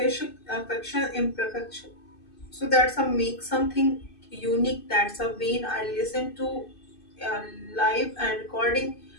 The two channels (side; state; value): right; late; 2.6 ms